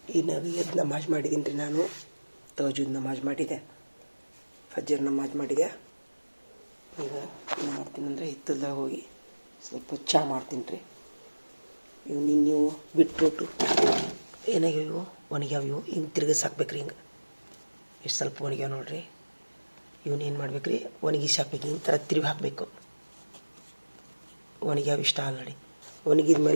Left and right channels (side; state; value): both; inverted; correlation -1.00